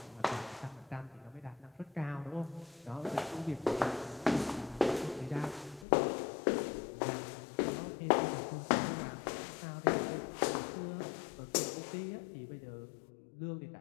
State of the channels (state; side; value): drops out; right; at 5.9 s